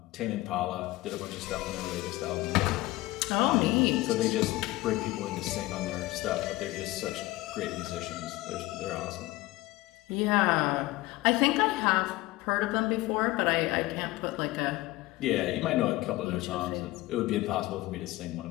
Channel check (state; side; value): quieter; right; 19.1 dB